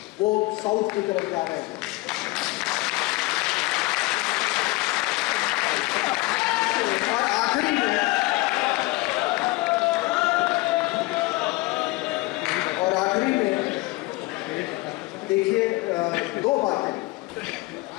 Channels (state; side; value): quieter; right; 22.4 dB